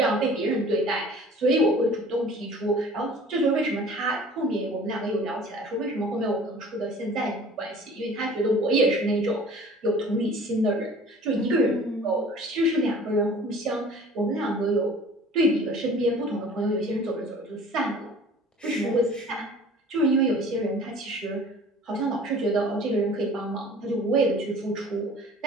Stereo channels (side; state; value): both; normal; correlation 0.47